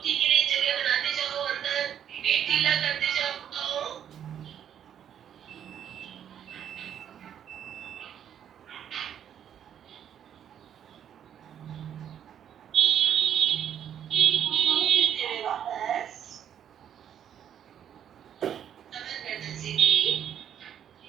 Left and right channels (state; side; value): quieter; left; 9.4 dB